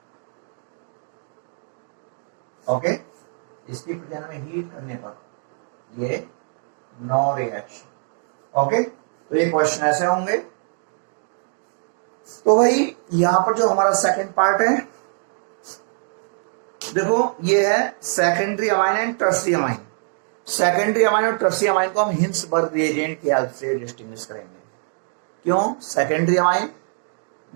ओके, इसकी प्रेजेंस में हीट करने पर ये नो रिएक्शन। ओके, तो ये क्वेश्चन ऐसे होंगे। तो भाई यहां पर जो हमारा सेकंड पार्ट है, देखो ये है secondary amine and tertiary amine. Secondary amine और टर्शियरी अमाइन को हम हिंसबर्ग रिएजेंट की हेल्प से डिस्टिंग्विश करेंगे। क्यों सेकेंडरी अमाइन?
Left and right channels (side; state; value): left; silent; 61 dB below the other